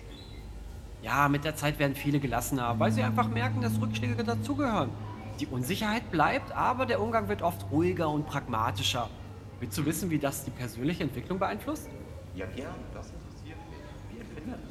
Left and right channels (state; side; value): identical; both; correlation 1.00